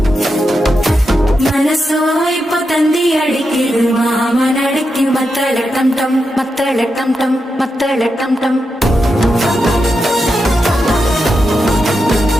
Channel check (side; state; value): both; normal; correlation 0.87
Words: மனசோ இப்போ தந்தி அடிக்குது மாமன் அடிக்கு மத்தள டம் டம் மத்தள டம் டம் மத்தள டம் டம்